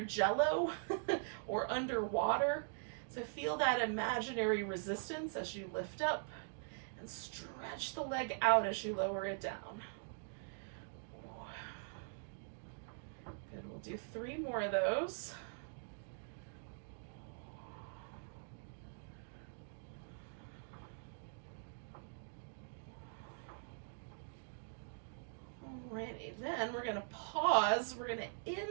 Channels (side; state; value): left; silent; digital silence